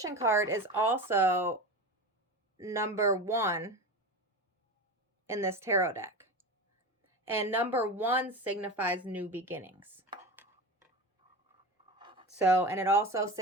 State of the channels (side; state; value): both; normal; correlation 0.27